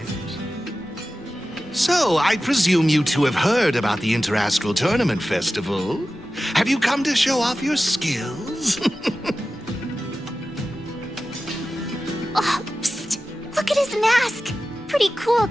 So, I presume you two have heard about the Interastral Tournament Festival. Have you come to show off your skills? Oh, psst! Look at his mask! mask. Pretty cool,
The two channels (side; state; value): both; normal; correlation 0.94